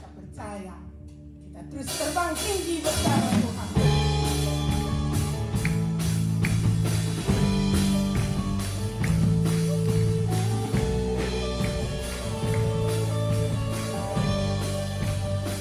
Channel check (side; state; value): both; identical; correlation 1.00